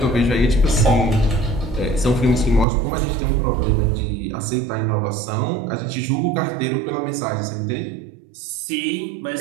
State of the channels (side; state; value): left; drops out; at 2.7 s